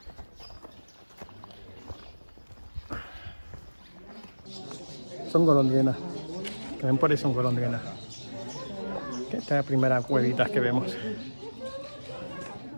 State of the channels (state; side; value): inverted; both; correlation -1.00